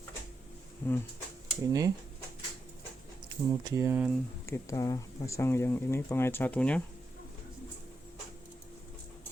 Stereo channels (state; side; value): normal; both; correlation 0.85